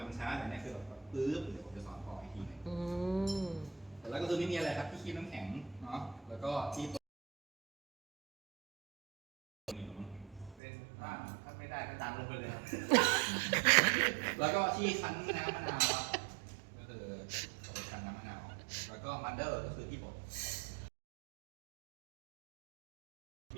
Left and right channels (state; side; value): drops out; left; at 10.6 s